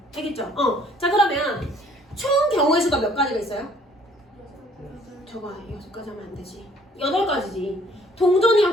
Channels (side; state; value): both; normal; correlation 0.58